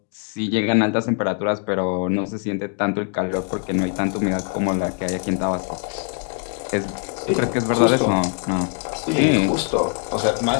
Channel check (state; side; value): quieter; right; 38.8 dB